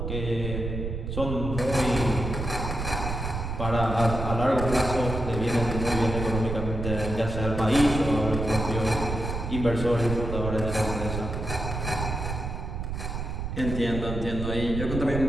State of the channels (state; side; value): noise; right; rumble, 4 dB below the sound